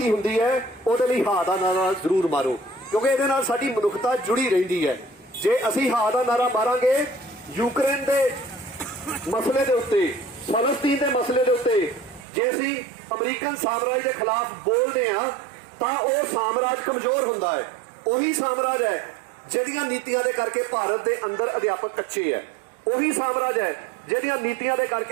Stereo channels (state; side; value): drops out; left; at 12.2 s